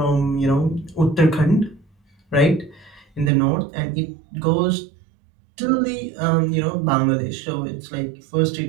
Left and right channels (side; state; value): left; drops out; at 3.3 s